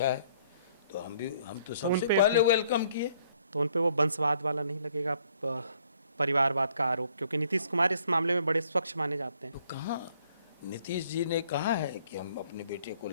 है, तो हम तो सबसे उनपे पहले वेलकम किए। तो उन पे वो वंशवाद वाला नहीं लगेगा, परिवारवाद का आरोप? क्योंकि नीतीश कुमार इस मामले में बड़े स्वच्छ माने जाते हैं। तो कहाँ नीतीश जी ने कहा है कि हम अपने बेटे को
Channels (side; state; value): both; inverted; correlation -0.64